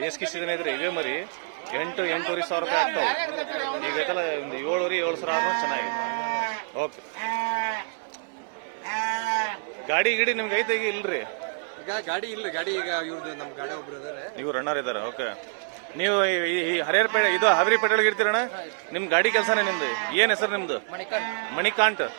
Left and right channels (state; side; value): silent; left; digital silence